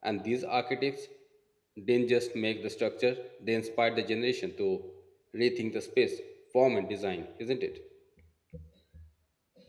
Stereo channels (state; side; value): identical; both; correlation 1.00